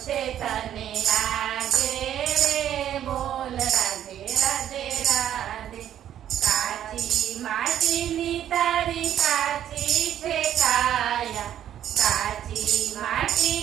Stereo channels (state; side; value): quieter; left; 10.8 dB